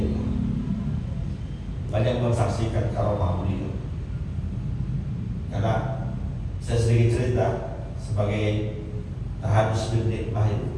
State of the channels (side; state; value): both; identical; correlation 1.00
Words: banyak mensaksikan karomah beliau. Karena saya sedikit cerita sebagai tahadus bin nikmah